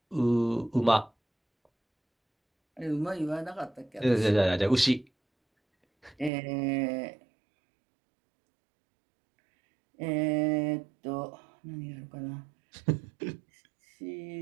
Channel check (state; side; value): drops out; left; at 6.3 s